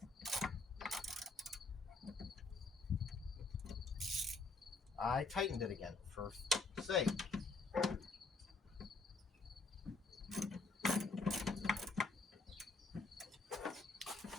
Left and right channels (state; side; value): quieter; right; 3.7 dB